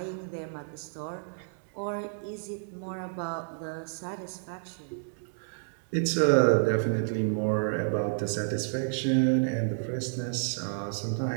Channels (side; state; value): left; silent; digital silence